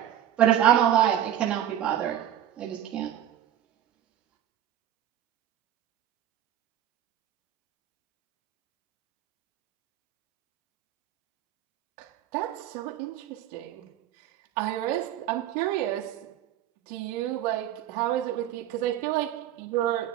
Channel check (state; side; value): quieter; left; 11.5 dB